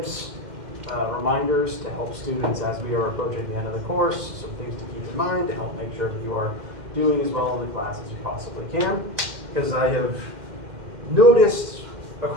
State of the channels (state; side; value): late; left; 2.1 ms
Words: reminders to help students as we are approaching the end of the course, some things to keep in mind to help make sure that you are doing as well in the class as you possibly can, because I have noticed